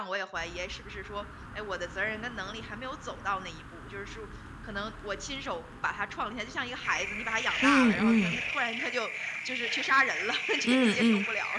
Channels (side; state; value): both; identical; correlation 1.00